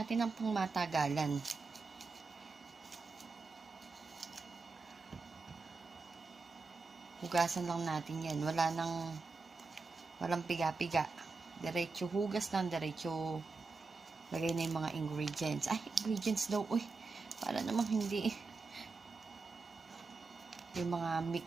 ang pangmatagalan. Hugasan lang natin yan. Walang piga-piga. Diretso hugas lang, diretso lagay na yung mga ingredients. Ingredients daw. Uy, para namang hindi. Yung mga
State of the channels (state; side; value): quieter; left; 4.1 dB